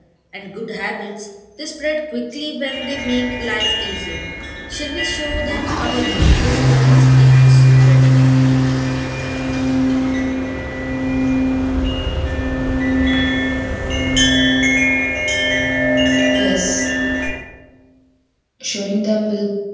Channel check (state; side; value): identical; both; correlation 1.00